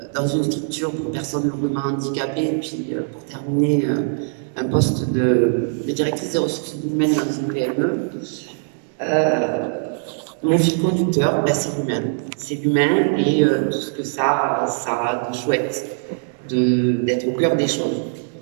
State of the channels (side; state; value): left; silent; digital silence